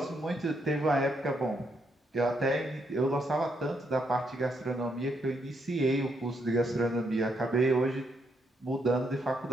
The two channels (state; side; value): normal; both; correlation 0.76